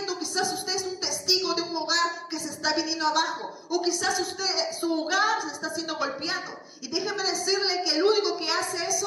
Quizás usted es un testigo de un hogar que se está viniendo abajo. O quizás su hogar se está siendo golpeado. Y déjeme decirle que el único que hace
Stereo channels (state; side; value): identical; both; correlation 1.00